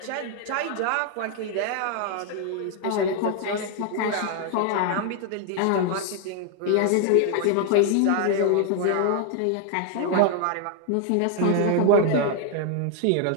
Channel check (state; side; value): different; both; correlation 0.00